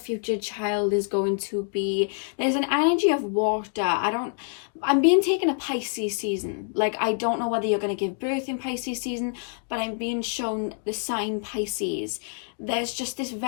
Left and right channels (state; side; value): silent; right; 56 dB below the other